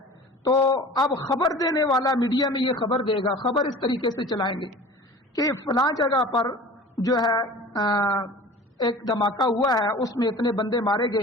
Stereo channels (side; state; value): both; normal; correlation 0.41